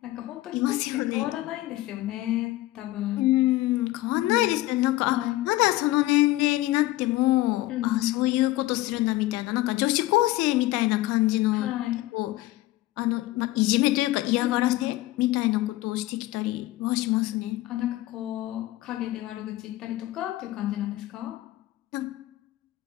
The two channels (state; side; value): quieter; right; 17.1 dB